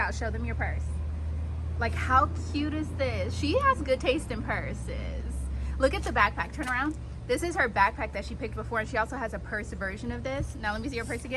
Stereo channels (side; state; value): both; identical; correlation 1.00